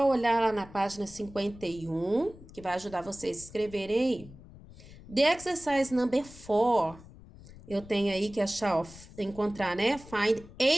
olhar lá na página 51, que vai ajudar vocês a escreverem aí. The exercise number 4, eu tenho aí que achar, ó, encontrar, né? Find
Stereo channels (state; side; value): noise; left; rumble, 19 dB below the sound